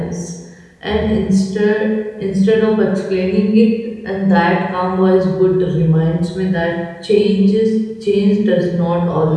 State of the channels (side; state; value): both; identical; correlation 1.00